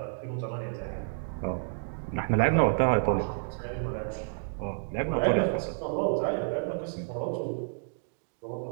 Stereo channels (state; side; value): silent; left; digital silence